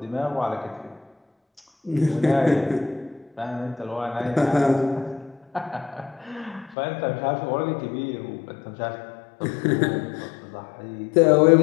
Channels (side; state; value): right; drops out; at 6.8 s